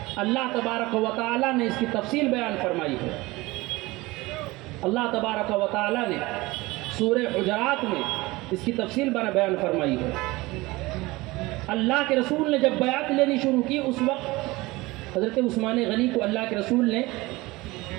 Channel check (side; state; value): left; quieter; 21.2 dB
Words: اللہ تبارک و تعالیٰ نے اس کی تفصیل بیان فرمائی ہے. اللہ تبارک و تعالیٰ نے سورہ حجرات میں اس کی تفصیل بیان فرمائی ہے. اللہ کے رسول نے جب بیعت لینی شروع کی اس وقت حضرت عثمان غنی کو اللہ کے رسول نے